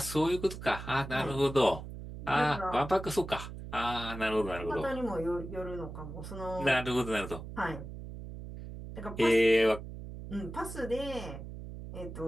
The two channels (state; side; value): noise; right; hum, 10 dB below the sound